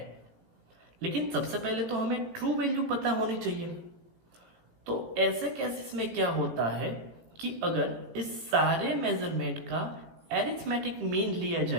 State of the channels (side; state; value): left; late; 17 ms